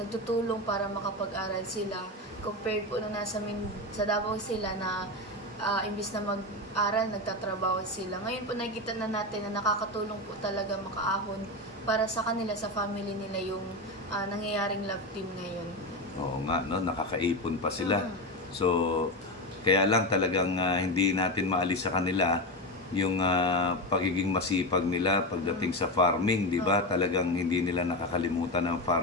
para makapag-aral sila. Compared po nung sa Davao sila na imbis na mag-aral, nagtatrabaho sila. Ngayon po nakikita na natin na nakakatulong po talaga makaahon para sa kanila, sa family nila yung nangyayaring love team ngayon. Oo nga, no? Nakakaipon pa sila. Mm. So, kaya lang talagang hindi natin maalis sa kanila yung pagiging masipag nila pagdating sa farming, di ba? Talagang hindi nila nakakalimutan ng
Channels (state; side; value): normal; both; correlation 0.17